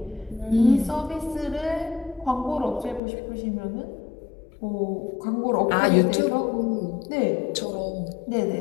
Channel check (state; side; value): drops out; right; at 3.0 s